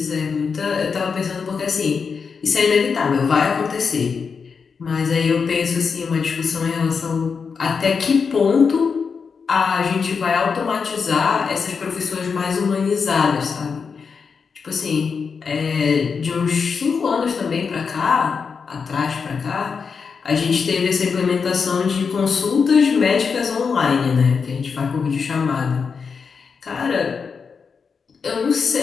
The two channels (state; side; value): quieter; right; 5.6 dB